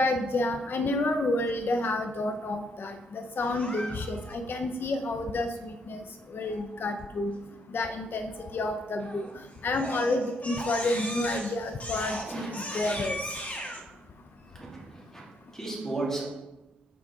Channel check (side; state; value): both; normal; correlation 0.72